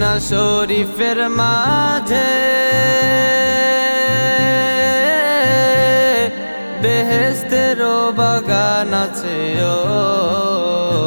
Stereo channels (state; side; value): inverted; both; correlation -1.00